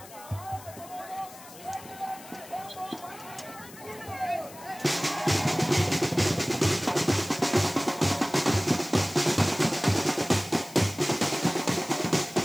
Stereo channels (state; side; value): noise; left; hiss, 18 dB below the sound